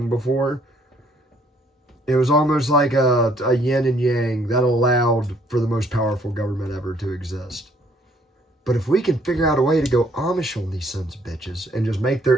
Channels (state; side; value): normal; both; correlation 0.64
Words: before. It was almost like a yin and yang that allowed for the most powerful government ever to exist. But if we can figure out a way to go Amish on these sons of bitches and just make their